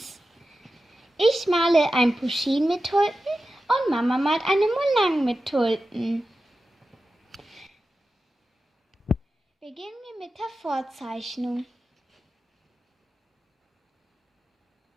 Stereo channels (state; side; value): normal; both; correlation 0.92